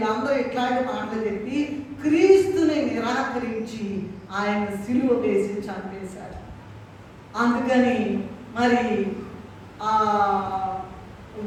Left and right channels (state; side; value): identical; both; correlation 1.00